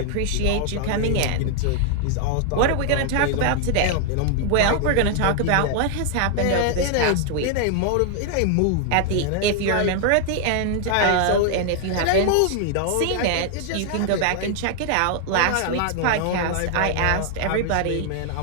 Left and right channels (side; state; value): both; different; correlation 0.00